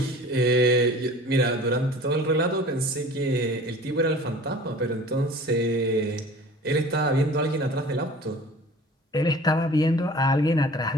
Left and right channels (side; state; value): both; normal; correlation 0.44